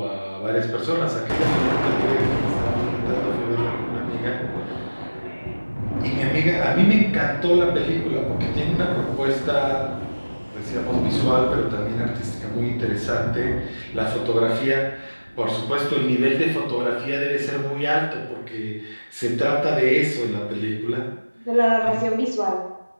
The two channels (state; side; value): inverted; both; correlation -1.00